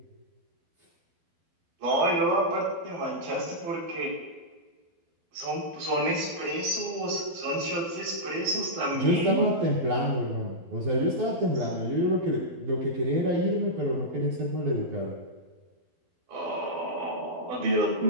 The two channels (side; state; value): left; late; 12 ms